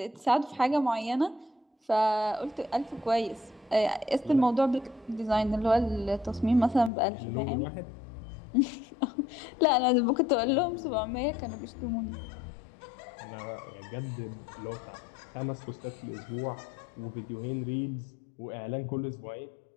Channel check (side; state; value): right; drops out; at 6.9 s